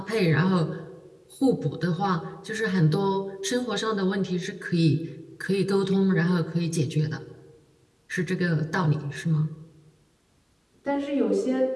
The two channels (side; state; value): both; identical; correlation 1.00